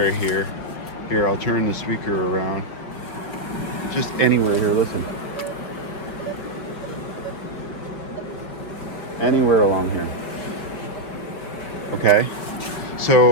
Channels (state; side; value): late; right; 5.2 ms